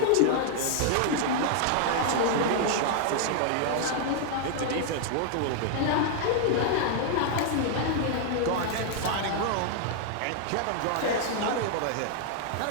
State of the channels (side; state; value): both; different; correlation 0.00